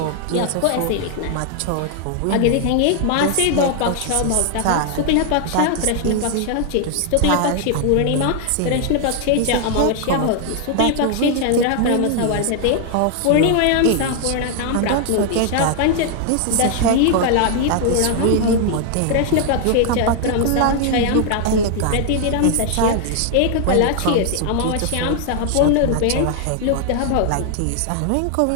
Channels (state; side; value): different; both; correlation 0.00